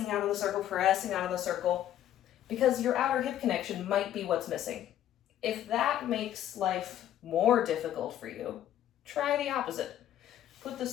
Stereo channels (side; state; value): right; quieter; 11.6 dB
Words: out of the circle, because your outer hip connection might be what's missing. If that makes life more difficult for you, try the opposite. Put the